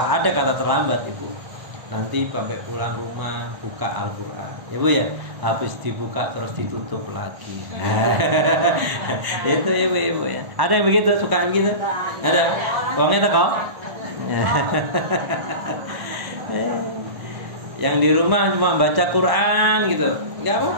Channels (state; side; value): late; left; 1.0 ms